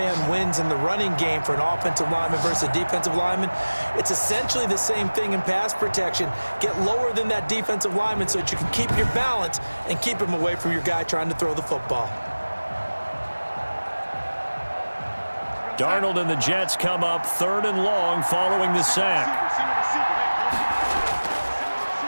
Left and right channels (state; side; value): inverted; both; correlation -1.00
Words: wins in the running game for an offensive lineman versus a defensive lineman. It's essentially the same thing in pass protection. Get lower than that defensive lineman so that you can keep your balance and keep him away from your guy trying to throw the football. Darnold and the Jets come up 3rd and long following the sack.